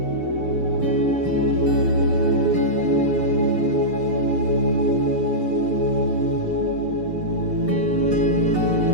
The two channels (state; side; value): late; left; 6.8 ms